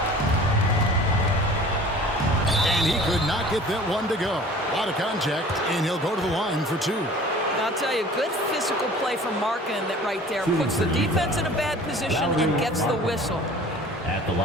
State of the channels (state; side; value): normal; both; correlation 0.45